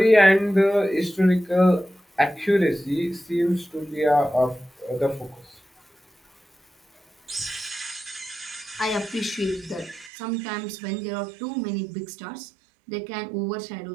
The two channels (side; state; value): left; drops out; at 10.1 s